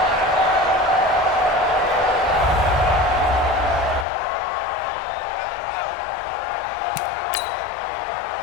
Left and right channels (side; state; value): right; drops out; at 4.0 s